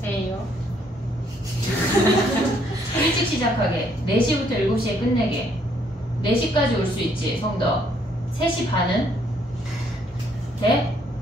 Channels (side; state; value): both; normal; correlation 0.68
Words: 에요. 일찍 시작하게. 4시부터 7시에 끝내게. 4시까지 올 수 있지, 성덕. 3시 반은? 돼?